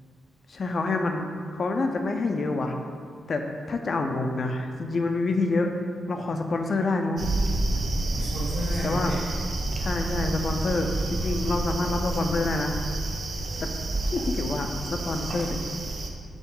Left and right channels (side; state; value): both; normal; correlation 0.85